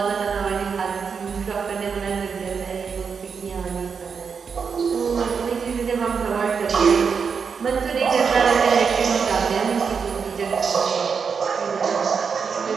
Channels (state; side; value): quieter; left; 6.0 dB